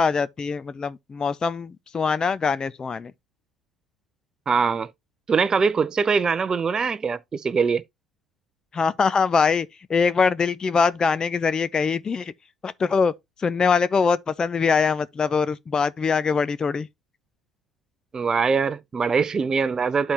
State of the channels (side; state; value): both; normal; correlation 0.81